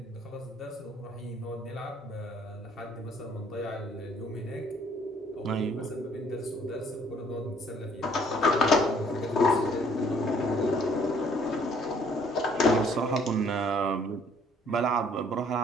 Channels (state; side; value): normal; both; correlation 0.61